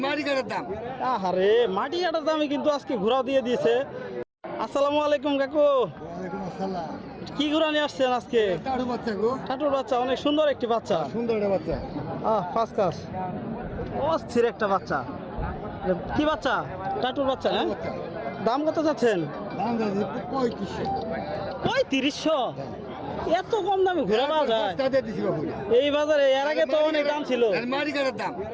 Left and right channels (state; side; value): identical; both; correlation 1.00